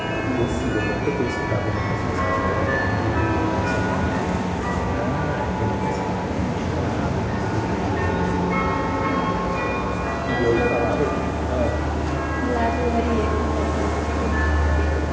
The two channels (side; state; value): both; identical; correlation 1.00